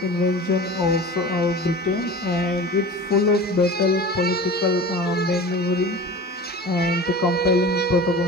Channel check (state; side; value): normal; both; correlation 0.36